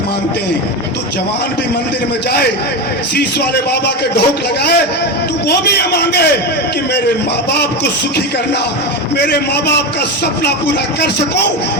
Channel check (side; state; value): both; normal; correlation 0.18